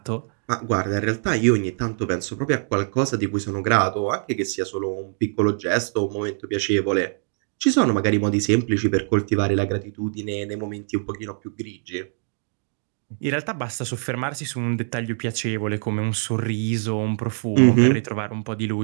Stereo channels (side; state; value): left; silent; 63 dB below the other